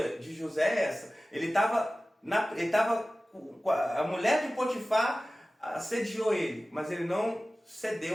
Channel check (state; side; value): normal; both; correlation 0.96